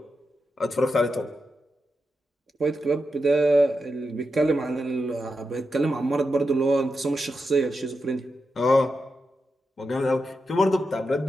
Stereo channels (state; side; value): normal; both; correlation 0.87